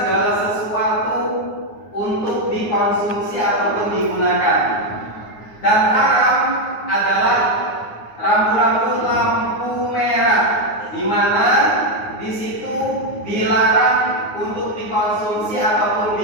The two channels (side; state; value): right; late; 9.6 ms